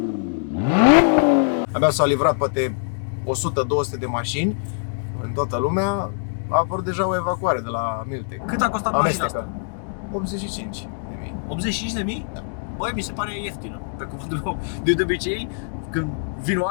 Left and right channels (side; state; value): right; silent; digital silence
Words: Abia s-au livrat poate 100-200 de mașini în toată lumea. A apărut deja o evacuare de la Miltec. Cât a costat mașina asta? 85.000. 85.000? Da. Băi, mi se pare ieftină. Pe cuvântul meu, de obicei, când vin